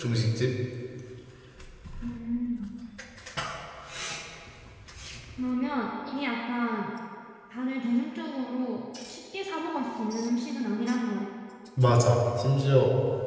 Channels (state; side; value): identical; both; correlation 1.00